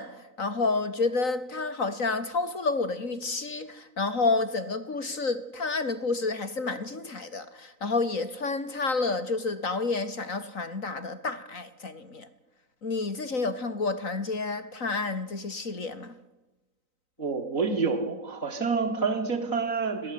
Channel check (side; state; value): right; late; 3.9 ms